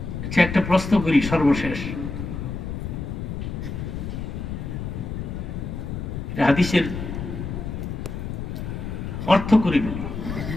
একটা প্রশ্ন করি সর্বশেষ, হাদিসের অর্থ করে বলি।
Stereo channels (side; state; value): left; noise; rumble, 5 dB below the sound